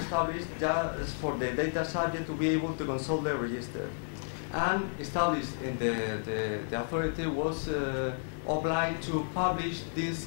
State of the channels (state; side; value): silent; right; digital silence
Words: just for the data subject to be able to consult the register, and established in the authority was obliged to publish this